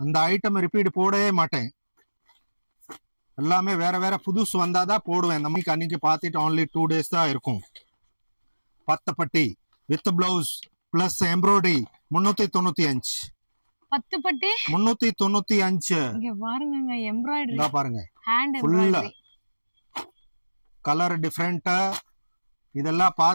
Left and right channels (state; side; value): inverted; both; correlation -1.00